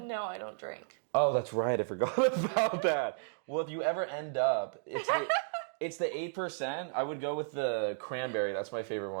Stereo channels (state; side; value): silent; left; digital silence